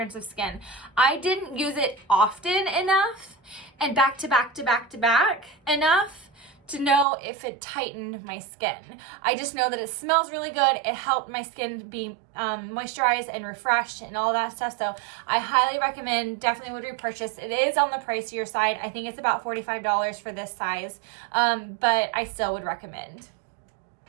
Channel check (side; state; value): left; drops out; at 7.1 s